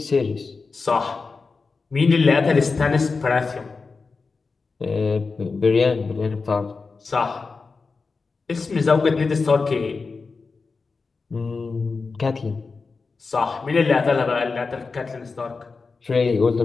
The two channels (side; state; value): right; quieter; 4.4 dB